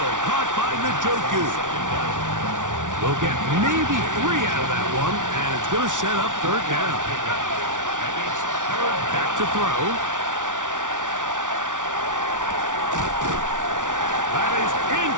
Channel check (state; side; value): late; left; 0.87 ms